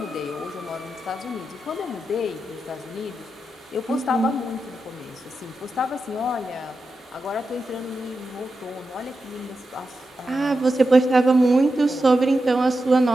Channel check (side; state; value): both; normal; correlation 0.89